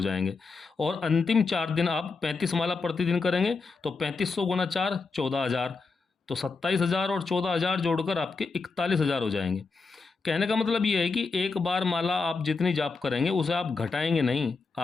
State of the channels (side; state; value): right; quieter; 4.3 dB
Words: जाएंगे। और अंतिम 4 दिन आप 35 माला प्रतिदिन करेंगे तो 3500 गुना 4 14,000, तो 27,000 और 14,000 जोड़कर आपके 41,000 हो जाएंगे। कहने का मतलब ये है कि एक बार माला आप जितनी जाप करेंगे उसे आप घटाएंगे नहीं,